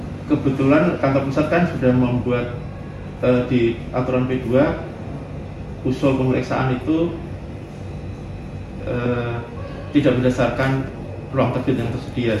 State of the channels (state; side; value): identical; both; correlation 1.00